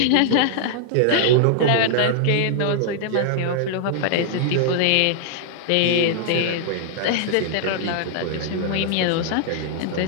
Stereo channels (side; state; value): both; different; correlation -0.01